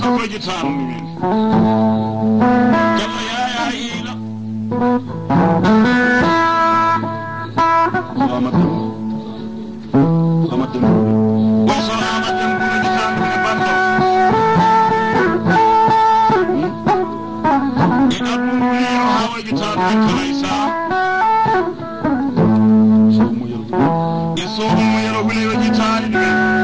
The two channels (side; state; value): both; identical; correlation 1.00